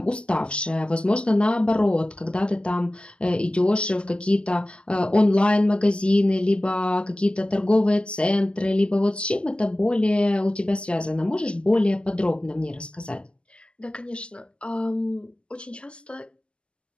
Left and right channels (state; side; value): late; right; 0.051 ms